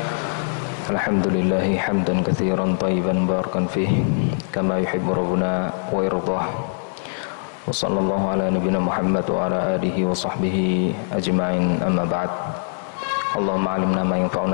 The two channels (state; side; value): silent; right; digital silence